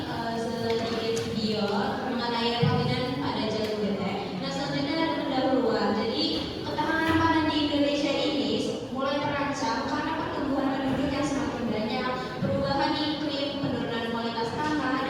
sedikit video mengenai rekomendasi pada jagung getek. Nah, selanjutnya ada pendahuluan. Jadi ketahanan pangan di Indonesia ini mulai terancam karena pertumbuhan penduduk yang semakin banyak, perubahan iklim, penurunan kualitas tanah,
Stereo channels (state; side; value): identical; both; correlation 1.00